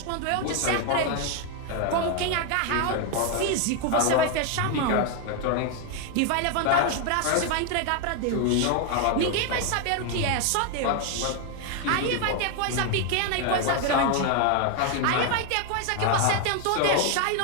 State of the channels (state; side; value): different; both; correlation 0.01